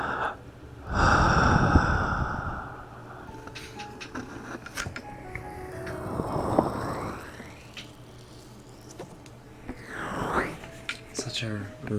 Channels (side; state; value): both; identical; correlation 1.00